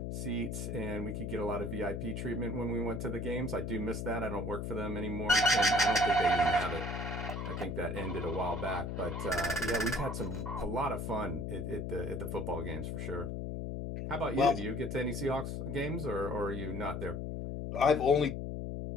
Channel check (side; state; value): left; noise; hum, 4 dB below the sound